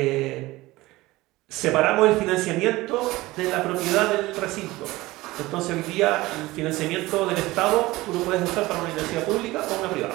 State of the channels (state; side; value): quieter; left; 19.2 dB